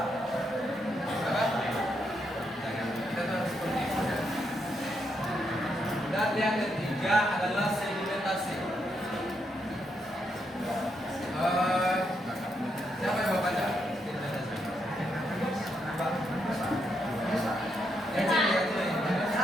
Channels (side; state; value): both; normal; correlation 0.79